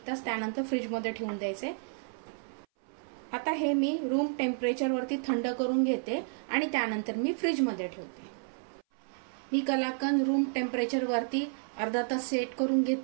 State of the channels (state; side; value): silent; left; 57 dB below the other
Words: तास, त्यानंतर फ्रीज मध्ये ठेवून द्यायचे। आता हे मी रूम टेम्परेचर वरती थंड करून घेते आणि त्यानंतर मी फ्रीज मध्ये ठेवते। मी कलाकंद रूम टेम्परेचर वरती अर्धा तास सेट करून